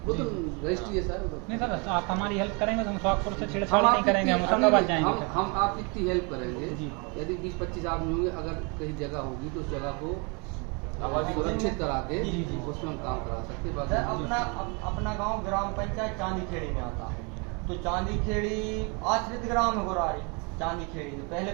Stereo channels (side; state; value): left; quieter; 32.2 dB